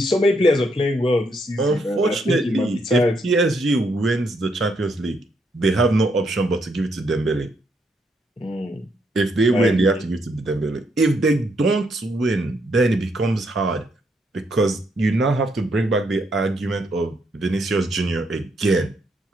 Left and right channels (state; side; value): normal; both; correlation 0.75